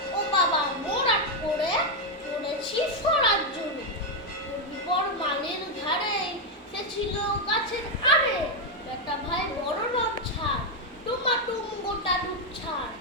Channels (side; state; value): both; normal; correlation 0.03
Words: ও বাবা মোড়াট করে পড়েছি সরার জন্য। পর মালের ধারে সে ছিল গাছের আড়ে, বেটা ভাই বড় রব ছাড়, টুমাটুম গোটা দুধ ছাড়,